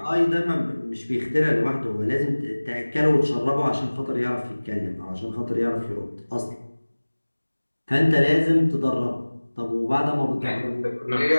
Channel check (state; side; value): inverted; both; correlation -1.00